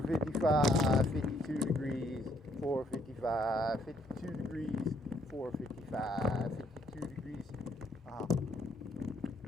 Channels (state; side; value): normal; both; correlation 0.68